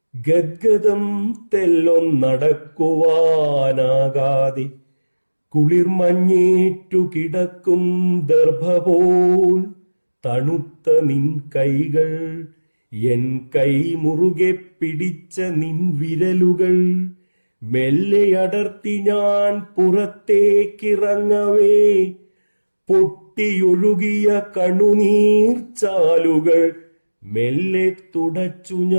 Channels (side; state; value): both; inverted; correlation -1.00